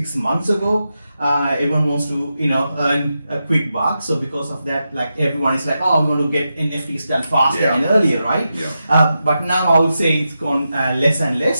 months ago, everyone wants to earn a quick buck. So because of that, like everyone is like, oh, we want to get NFTs done faster and earlier, right? Yeah. But now I would say it's gone less and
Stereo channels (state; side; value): inverted; both; correlation -0.88